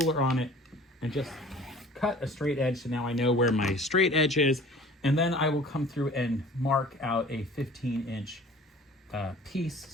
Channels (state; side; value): normal; both; correlation 0.47